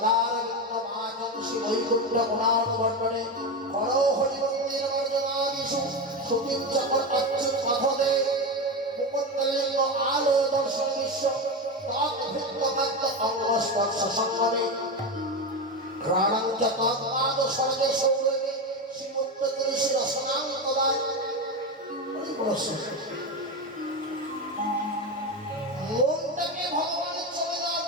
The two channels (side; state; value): both; normal; correlation 0.17